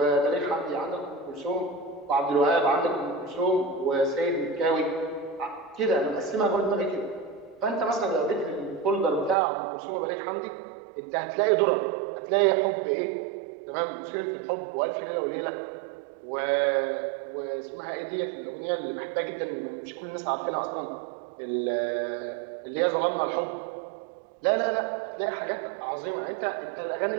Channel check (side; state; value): left; drops out; at 9.3 s